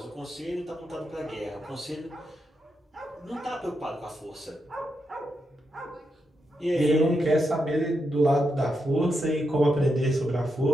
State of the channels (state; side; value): normal; both; correlation 0.84